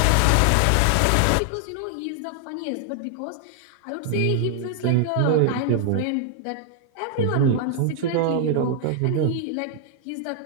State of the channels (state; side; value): different; both; correlation 0.00